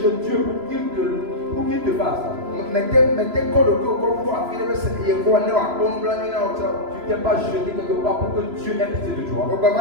Dieu pour qu'il te fasse. mettez quoi le corps pour affiler le Seigneur quoi ne va pas nous blâmer là Tu t'es pas jeté quelque part pour que Dieu ait pitié de toi. au baba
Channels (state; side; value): late; left; 3.0 ms